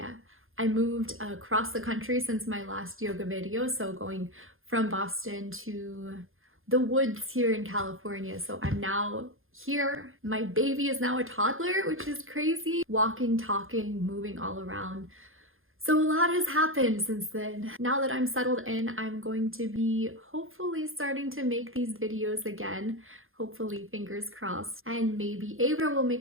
I moved across the country since my last yoga video, so going from Boston to the woods here in California. So I'm now here. My baby is now a toddler, which is crazy. Walking, talking, moving all around. So a lot has happened since then. Now that I'm settled in, I'm going to be hopefully starting to make these videos again. Hopefully, fingers crossed. And maybe Ava will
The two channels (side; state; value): left; late; 0.60 ms